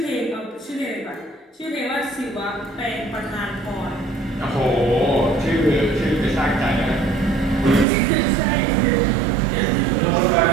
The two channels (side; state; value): left; drops out; at 7.9 s